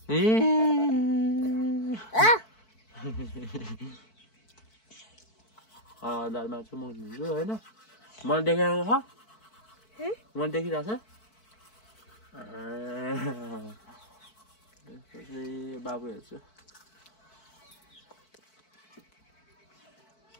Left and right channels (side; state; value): right; late; 4.6 ms